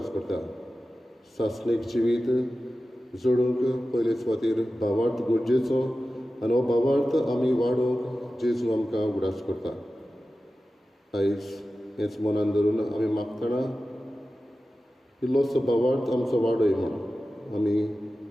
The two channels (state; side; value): normal; both; correlation 0.94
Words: करता. सासणीक जिवीत जोडूंक पयले सुवातेर भावार्थ गरजेचो आनी हो भावार्थ आमी वाडोवंक जेजू आमकां उगडास करता. आयज हेच मनान धरून आमी मागतना इल्लोसो भावार्थ आमचो वाडय म्हूण आमी